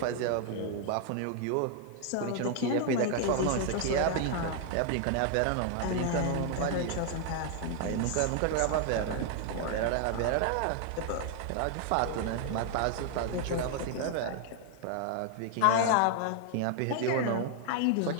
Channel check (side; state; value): both; different; correlation 0.00